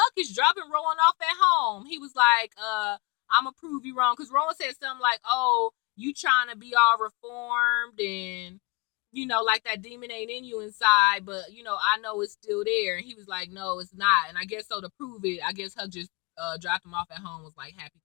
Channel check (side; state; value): right; quieter; 26.5 dB